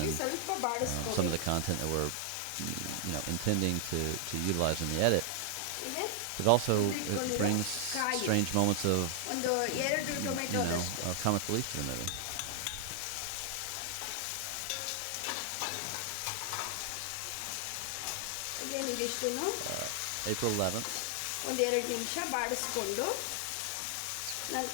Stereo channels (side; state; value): both; different; correlation 0.00